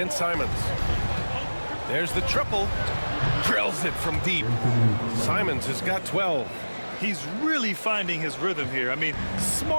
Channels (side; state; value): both; inverted; correlation -1.00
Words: Simons. There's the triple. Drills it from deep. Simons has got 12. He's really finding his rhythm here. I mean,